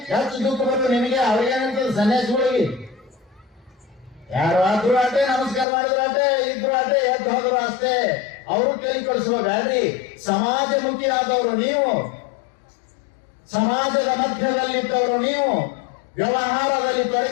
ಹೆಚ್ಚು ದುಃಖ ಬಂದು ನಿನಗೆ ಅವ್ರಿಗೇನಂತದ್ದು ಸನ್ಯಾಸಿಗಳಿಗೆ. ಯಾರು ಆದ್ರೂ ಆಟೆ, ನಮಸ್ಕಾರ ಮಾಡಿದ್ರು ಆಟೆ, ಇದ್ರು ಆಟೆ, ಎದ್ದು ಹೋದ್ರು ಅಷ್ಟೇ. ಅವರು ಕೈ ಕೊಡಿಸ್ಬೇಡ್ರಿ. ಸಮಾಜಮುಖಿ ಆದವರು ನೀವು, ಸಮಾಜದ ಮಧ್ಯದಲ್ಲಿದ್ದವರು ನೀವು, ವ್ಯವಹಾರದಲ್ಲಿ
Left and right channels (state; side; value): drops out; right; at 5.7 s